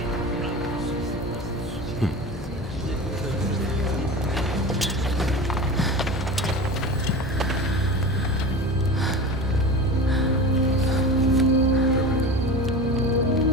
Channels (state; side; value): normal; both; correlation 0.31